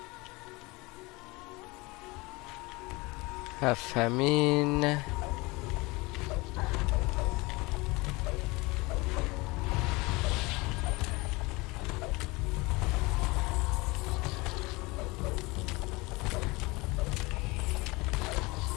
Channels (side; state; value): right; quieter; 24.0 dB